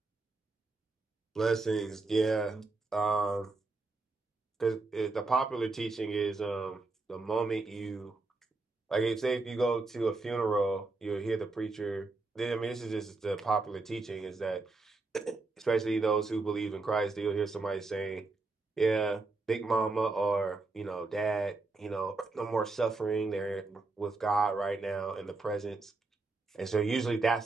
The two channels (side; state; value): left; quieter; 3.5 dB